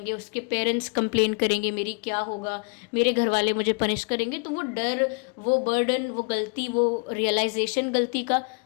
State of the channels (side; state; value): right; quieter; 35.3 dB